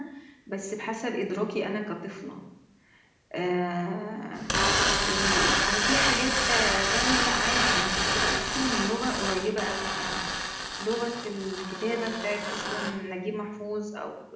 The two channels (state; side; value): identical; both; correlation 1.00